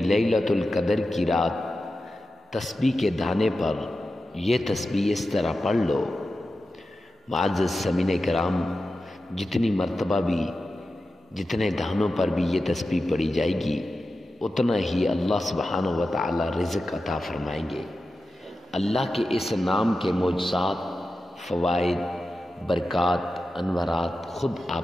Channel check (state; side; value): normal; both; correlation 0.92